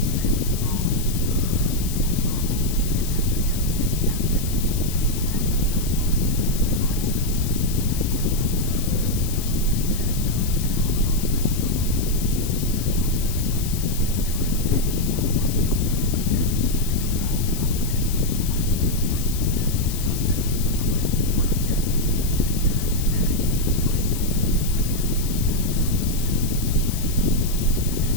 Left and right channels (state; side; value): noise; left; hiss, 9 dB below the sound